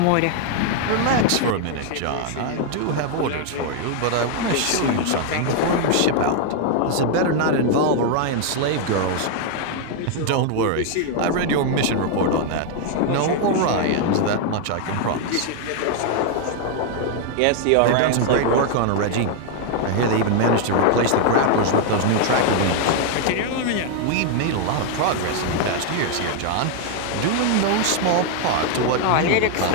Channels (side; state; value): both; different; correlation 0.00